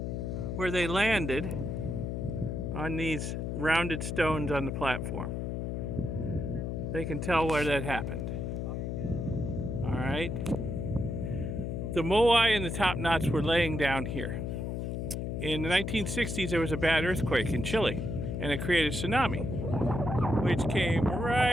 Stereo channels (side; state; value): left; noise; hum, 3 dB below the sound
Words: where they landed on these rounded stones on the platform. They can tell where that happened. All right. The Moai and the top knots were laying down here. In the 1960s, there was a bad earthquake in Chile, and it created a tsunami, which came